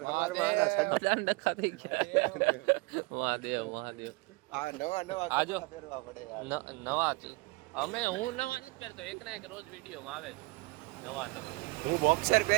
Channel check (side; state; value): left; quieter; 25.0 dB